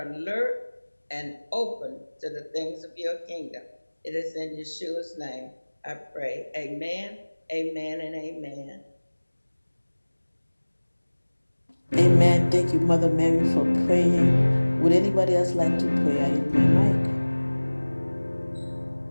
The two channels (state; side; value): inverted; both; correlation -1.00